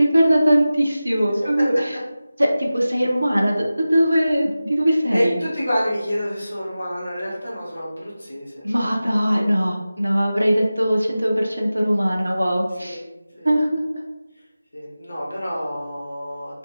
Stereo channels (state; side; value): inverted; both; correlation -0.95